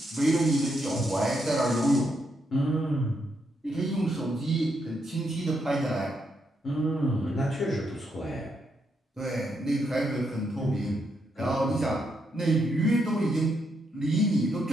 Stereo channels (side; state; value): both; normal; correlation 0.79